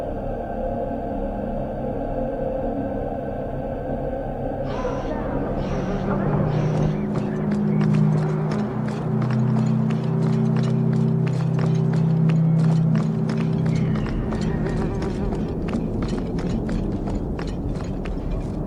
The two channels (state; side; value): identical; both; correlation 1.00